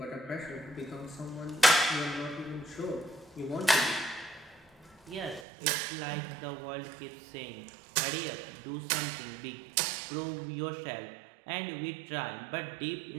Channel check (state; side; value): drops out; left; at 5.5 s